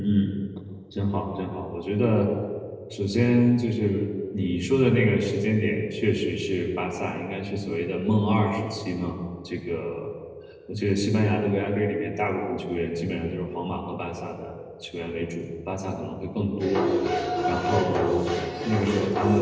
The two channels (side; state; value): both; identical; correlation 1.00